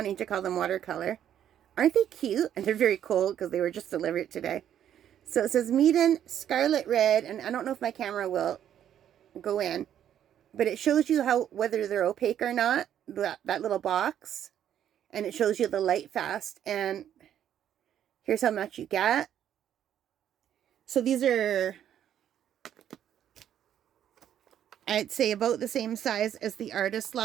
to call them watercolor. Aren't they cute? And they're very cold because they were just delivered today. So it says Meeden Scarlet Red, and I don't know if my camera will go in, but it shows you whether they're opaque or not, that little box, and it shows you the Lightfast, and here's how much you get. So these are, I'd say, about the same size as the Artist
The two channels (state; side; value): quieter; left; 10.2 dB